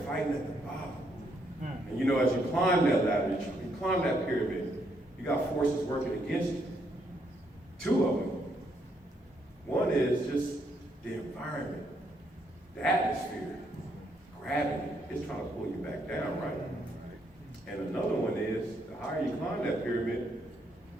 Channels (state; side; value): normal; both; correlation 0.74